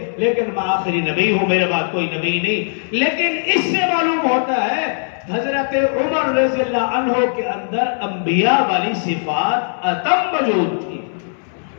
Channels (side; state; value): right; silent; 67 dB below the other